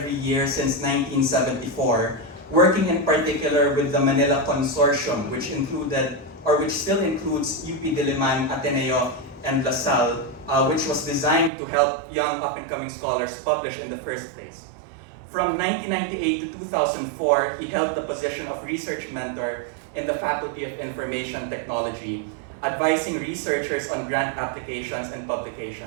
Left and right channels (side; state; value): left; drops out; at 11.5 s